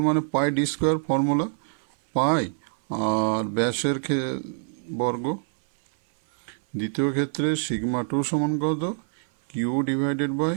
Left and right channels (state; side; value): silent; left; 59 dB below the other